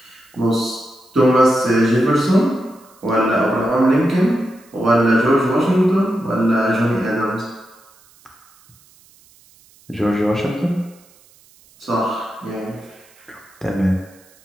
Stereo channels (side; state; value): right; noise; hiss, 29 dB below the sound